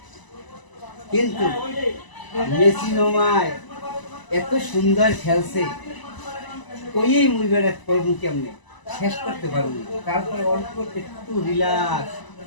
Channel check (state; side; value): late; right; 1.0 ms